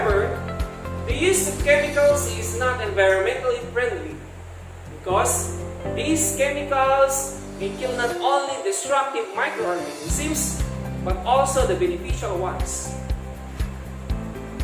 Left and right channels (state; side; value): identical; both; correlation 1.00